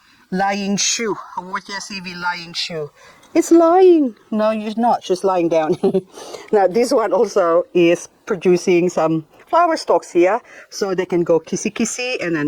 lying shoe. Haworthia CV lying shoe. It's lying. No, you're not. She's lying down. Now, this one also is producing some flower stalks here, so they can go kissy, and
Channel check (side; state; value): both; identical; correlation 1.00